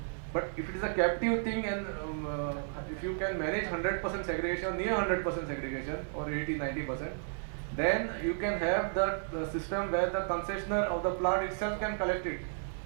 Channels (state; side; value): silent; left; 56 dB below the other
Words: But if it is a captive thing, and if you can manage 100% segregation, near 100% segregation, or 80-90%, then you can have that system where the concessionaire of the plant itself can collect it.